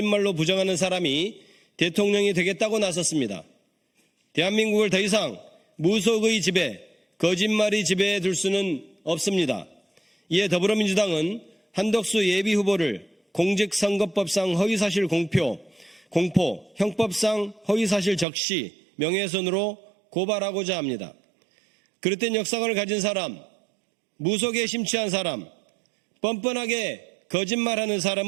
부정하는 사람이 대통령이 되겠다고 나섰습니다. 대한민국을 더 이상 무속의 지배, 거짓말이 지배해 둘 수는 없습니다. 이에 더불어민주당은 한덕수 예비 후보를 공직선거법상 허위사실 공포, 형법상 허위사실 적시, 명예훼손으로 고발하고자 합니다. 그릇된 역사관을 가진 사람, 무속에 심취한 사람, 뻔뻔하게 거짓말하는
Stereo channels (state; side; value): drops out; left; at 18.2 s